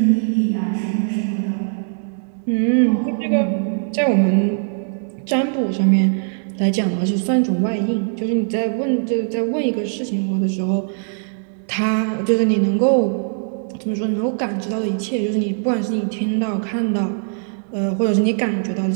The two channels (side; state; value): left; silent; digital silence